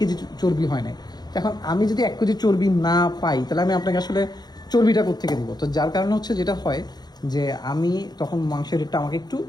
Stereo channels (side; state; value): right; late; 0.20 ms